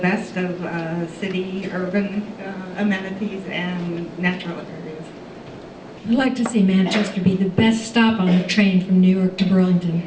of city, urban amenities and natural areas. I'd like to see Manchester be the best stop on a train from New York to Burlington.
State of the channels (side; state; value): both; identical; correlation 1.00